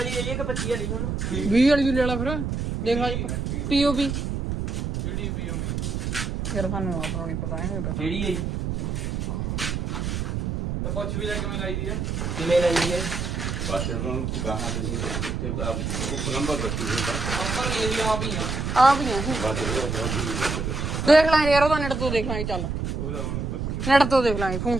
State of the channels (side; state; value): right; noise; rumble, 2 dB below the sound